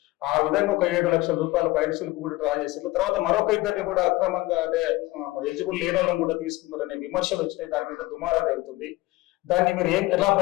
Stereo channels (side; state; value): right; quieter; 19.6 dB